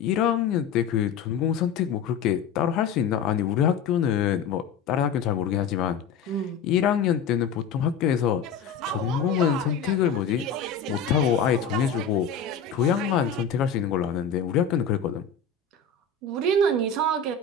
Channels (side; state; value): right; quieter; 5.9 dB